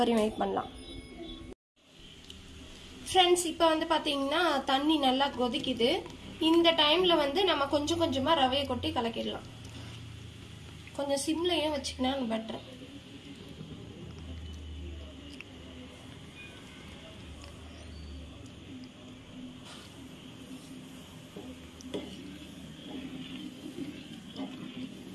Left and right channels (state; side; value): identical; both; correlation 1.00